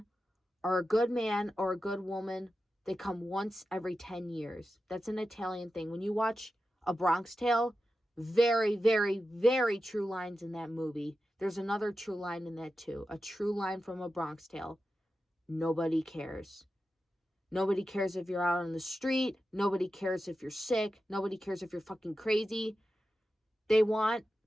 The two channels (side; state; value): both; normal; correlation 0.91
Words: or a good man or a good woman, they come once every 10 years. That's an Italian thing. When you watch A Bronx Tale, very, very, very true lines in that movie. There's another true line in that too. A true line from A Bronx Tale. Nobody cares. Nobody cares if you're out on the street. Nobody cares if you're sick. Nobody cares if you're fucking crazy. They want